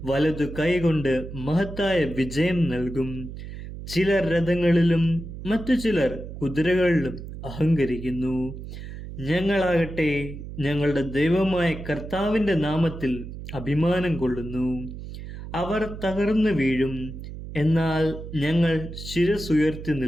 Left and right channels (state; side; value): noise; right; hum, 10 dB below the sound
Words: വലതു കൈകൊണ്ട് മഹത്തായ വിജയം നൽകും. ചിലർ രഥങ്ങളിലും മറ്റു ചിലർ കുതിരകളിലും അഹങ്കരിക്കുന്നു. ഞങ്ങളാകട്ടെ ഞങ്ങളുടെ ദൈവമായ കർത്താവിൻ്റെ നാമത്തിൽ അഭിമാനം കൊള്ളുന്നു. അവർ തകർന്നു വീഴും, എന്നാൽ ഞങ്ങൾ ശിരസുയർത്തി